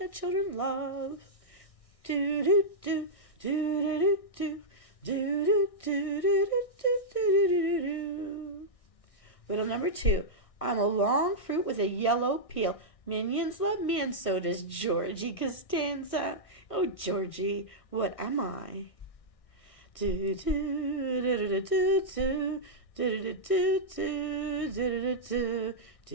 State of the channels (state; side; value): late; right; 1.6 ms